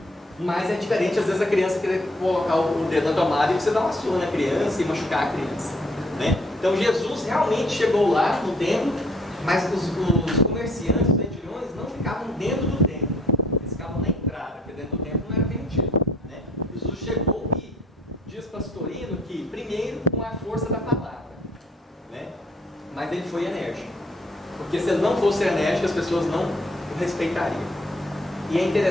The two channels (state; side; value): normal; both; correlation 0.62